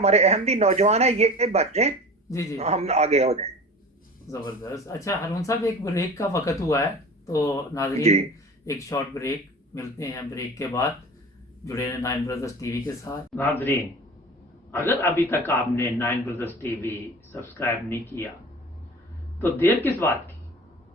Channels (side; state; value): both; normal; correlation 0.38